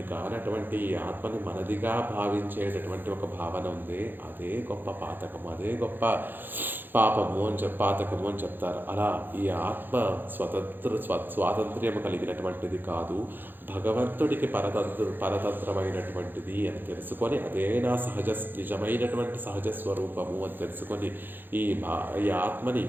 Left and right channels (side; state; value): left; late; 0.094 ms